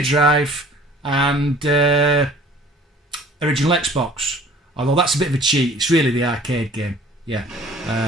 and original Xbox. Although that's a bit of a cheat. It's really the arcade game. Yeah.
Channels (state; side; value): normal; both; correlation 0.50